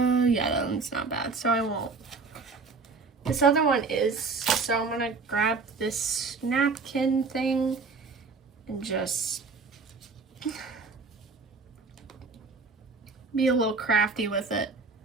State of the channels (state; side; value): quieter; left; 4.4 dB